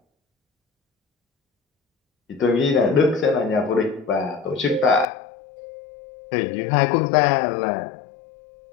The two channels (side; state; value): right; drops out; at 5.1 s